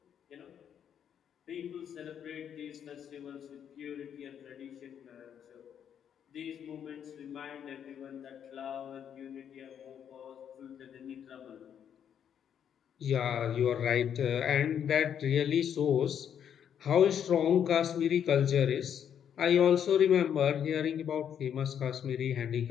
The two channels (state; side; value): quieter; right; 8.8 dB